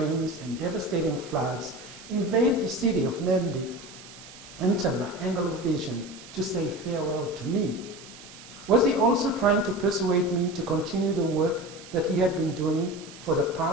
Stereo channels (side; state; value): right; noise; hiss, 18 dB below the sound